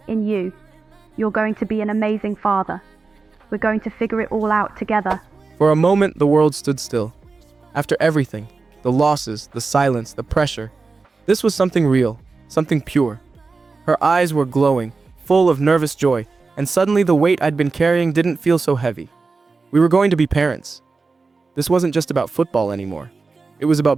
in you. You're going to be an amazing father. We're going to figure it all out together. For a moment, the world stood still. After everything, the losses, the silence, the pressure, this was something real, something pure. Her eyes were glowing, full of nervous joy, and suddenly the weight I'd been carrying didn't feel so heavy. We were going to be parents. This wasn't just about football anymore. It was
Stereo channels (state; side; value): quieter; left; 4.1 dB